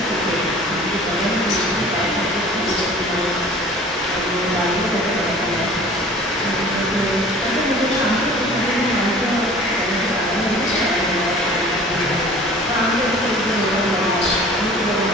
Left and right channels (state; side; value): normal; both; correlation 0.46